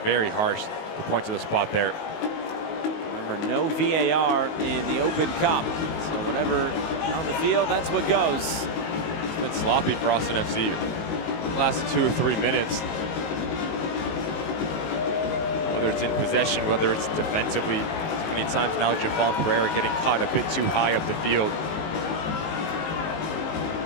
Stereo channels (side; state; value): right; late; 19 ms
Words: very harsh to point to the spot there. Remember, no VAR in the Open Cup. So whatever on the field, that's what goes. It's been sloppy for Austin FC the last 2 or 3 minutes. Whether it's in possession, whether it's defensively. Many times now Jafal Pereira getting caught a bit too high up the field.